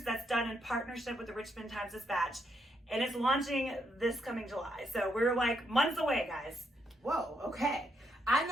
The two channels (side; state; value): both; normal; correlation 0.77